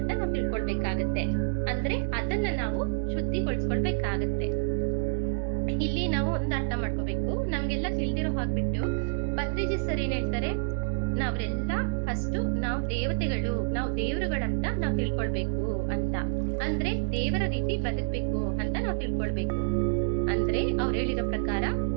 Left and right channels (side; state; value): left; silent; digital silence